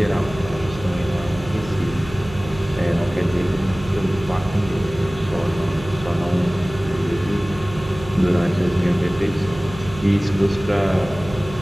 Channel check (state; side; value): noise; right; hum, 14 dB below the sound